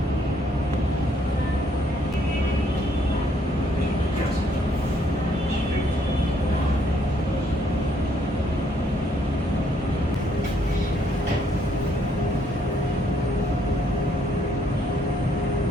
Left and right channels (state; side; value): normal; both; correlation 0.69